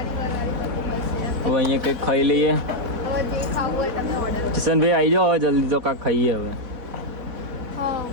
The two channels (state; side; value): late; left; 4.1 ms